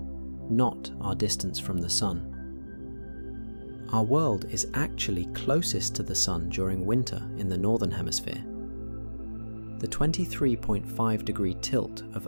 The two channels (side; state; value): both; inverted; correlation -1.00